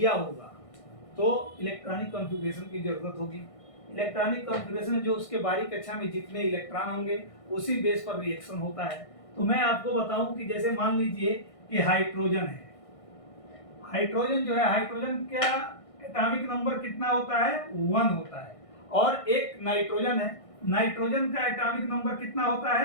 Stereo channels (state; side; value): late; right; 1.6 ms